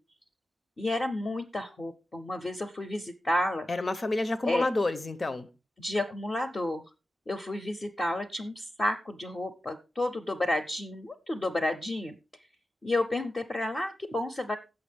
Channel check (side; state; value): both; normal; correlation 0.92